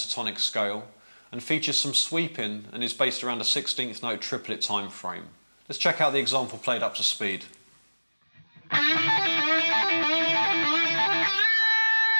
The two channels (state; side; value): inverted; both; correlation -1.00